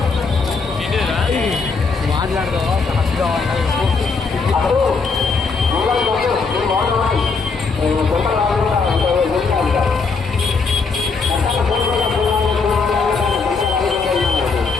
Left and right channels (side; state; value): right; quieter; 4.6 dB